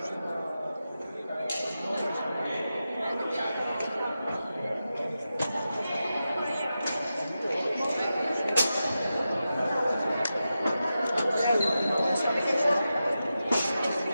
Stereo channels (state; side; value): inverted; both; correlation -0.91